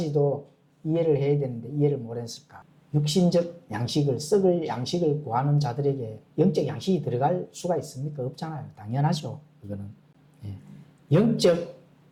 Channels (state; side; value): identical; both; correlation 1.00